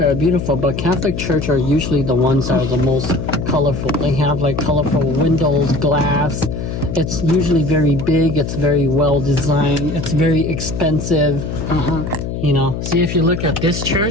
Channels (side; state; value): left; noise; hum, 5 dB below the sound